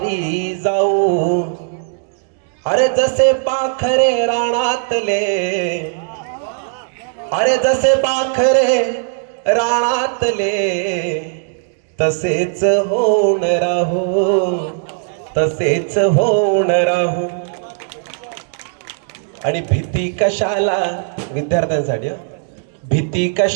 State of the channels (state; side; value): silent; left; 65 dB below the other